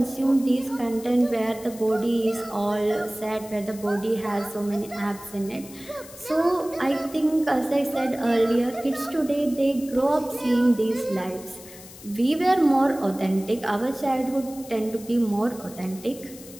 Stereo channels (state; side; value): noise; left; hiss, 18 dB below the sound